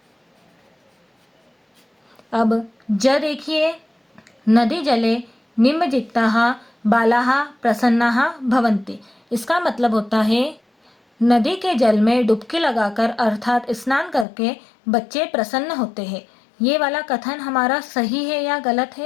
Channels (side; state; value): right; drops out; at 14.2 s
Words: अब ज देखिए, नदी जले निमज्जिताः बालाः प्रसन्नाः भवन्ति। इसका मतलब होता है नदी के जल में डुबकी लगाकर अर्थात स्नान करके बच्चे प्रसन्न होते हैं। ये वाला कथन हमारा सही है या गलत